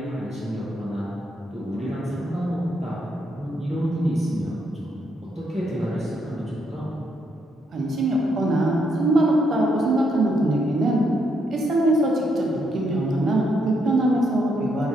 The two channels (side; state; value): both; normal; correlation 0.76